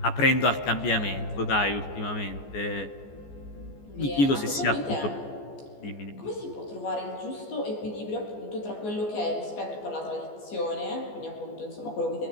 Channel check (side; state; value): right; late; 14 ms